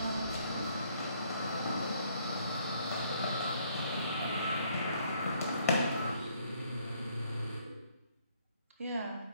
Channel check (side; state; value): both; inverted; correlation -0.66